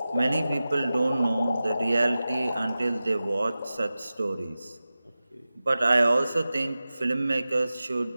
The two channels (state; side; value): inverted; both; correlation -0.95